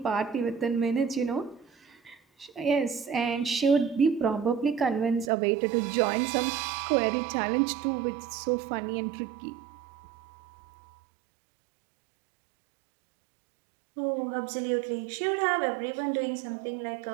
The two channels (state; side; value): drops out; left; at 5.3 s